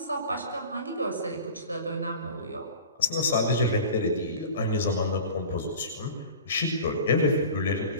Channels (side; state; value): both; inverted; correlation -0.38